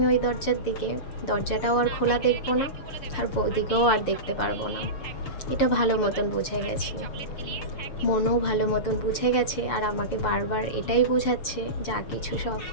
ওই দরজার দিকে, দরজাটাও আর খোলা দেখবো না, আর বৌদিকেও আর দেখতে পারবো না। এটা ভালো মতন বুঝে গেছি, মনও ভালো মতন বুঝে গেছে, আর আমাকে বারবার এটাই বোঝাচ্ছে যা কিছু সব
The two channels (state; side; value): late; right; 6.7 ms